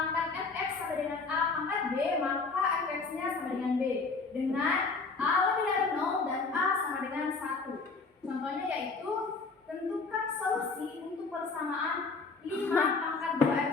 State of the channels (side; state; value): right; quieter; 4.2 dB